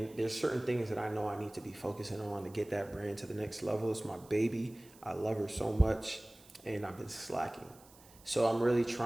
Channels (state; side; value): noise; right; hiss, 24 dB below the sound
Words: there's certain things that I know I need to be focusing on to get that brand to the next level. It's my baby. I love her so much, and I've been slacking. So I'm really